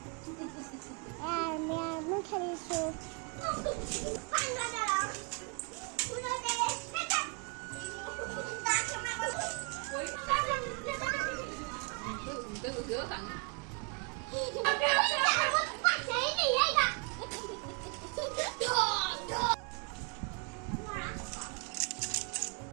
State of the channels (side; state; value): left; quieter; 34.7 dB